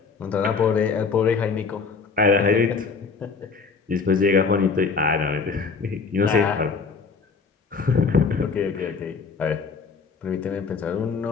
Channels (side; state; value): right; quieter; 5.0 dB